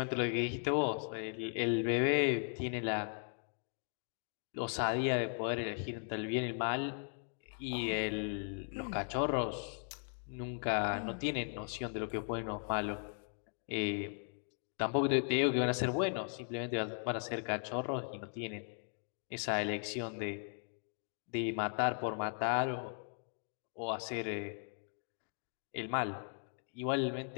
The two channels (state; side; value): silent; right; 53 dB below the other